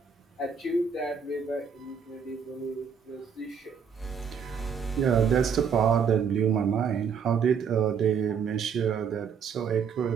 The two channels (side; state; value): left; quieter; 6.6 dB